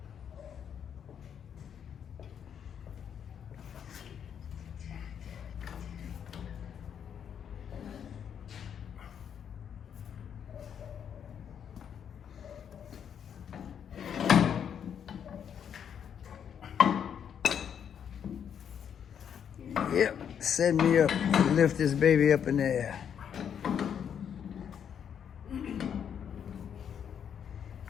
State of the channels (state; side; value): quieter; right; 8.3 dB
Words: Yep, set me up. Lift this baby up in the air.